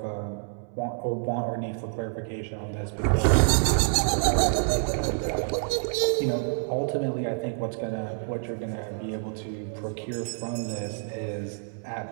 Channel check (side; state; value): left; silent; 60 dB below the other